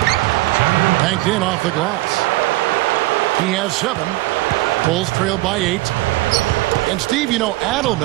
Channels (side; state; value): left; quieter; 19.4 dB